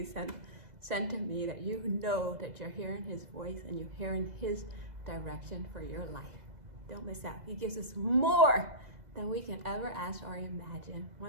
sent to me, that you know that you're hearing his voice and you're hearing his direction for your life. Don't miss out. He gives us more than we can ever ask or imagine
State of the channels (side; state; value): left; late; 2.0 ms